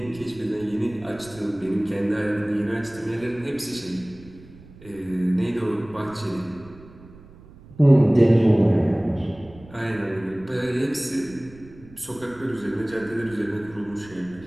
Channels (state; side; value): noise; right; rumble, 21 dB below the sound